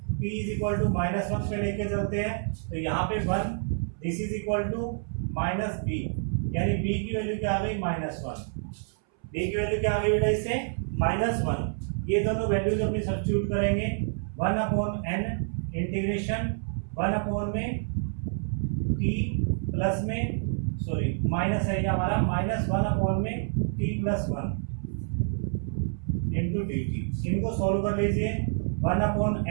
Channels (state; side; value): silent; left; 59 dB below the other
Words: t is equal to minus one पे लेके चलते हैं, तो यहाँ पे 1, this is equal to minus b, यानी b की वैल्यू क्या आ गई माइनस वन, b की वैल्यू क्या आ गई बेटा इससे माइनस वन। ये दोनों वैल्यूज अपनी सब्स्टिट्यूट करेंगे, 1 अपॉन n इंटीग्रेशन 1 अपॉन में t प्लस में सॉरी माइनस है ये हमारा, माइनस 1 अपॉन में t plus one into d T. इनको सॉल्व कर लीजिए, 1 अपॉन